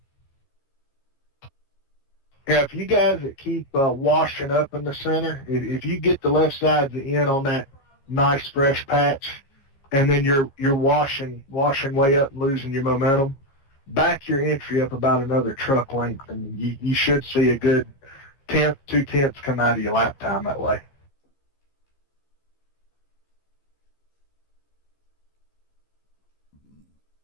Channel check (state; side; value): late; right; 15 ms